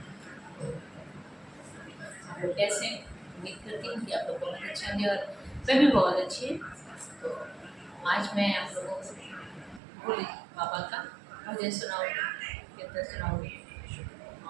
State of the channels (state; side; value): drops out; left; at 9.8 s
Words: आप लोग कैसे हैं? उम्मीद करती हूँ कि आप लोग बहुत अच्छे होंगे और मैं भी बहुत अच्छी हूँ। तो आज मैं आप लोगों को भोले बाबा का भजन सुनाऊँगी, कीर्तन सुनाऊँगी